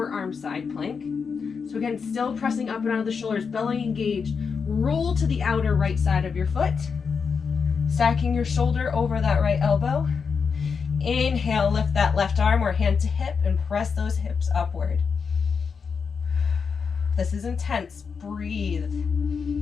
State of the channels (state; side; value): quieter; right; 5.8 dB